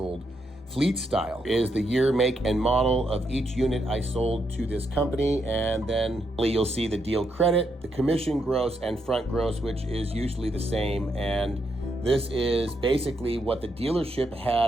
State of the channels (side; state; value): both; normal; correlation 0.79